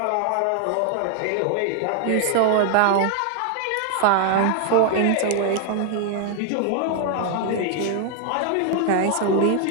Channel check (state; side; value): different; both; correlation 0.00